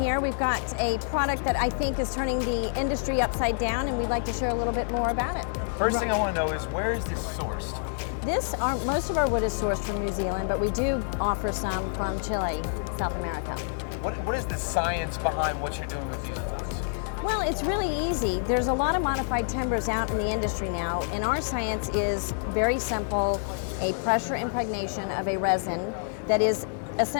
We've got a product that I think is turning the industry upside down, and we'd like to share a little bit more about it. First thing I want to know is, where is this sourced? Most of our wood is sourced from New Zealand, but we do offer some from Chile, South America. What is the science behind what you're doing with these boards? Well, it's really easy. There's a lot of modified timbers out in the industry now, and our science is very simple, a pressure impregnation of a resin that is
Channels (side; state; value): right; silent; digital silence